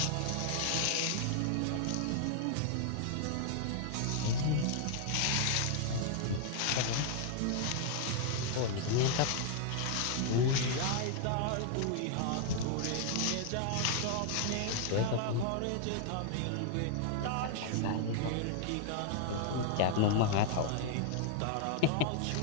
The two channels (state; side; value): different; both; correlation 0.00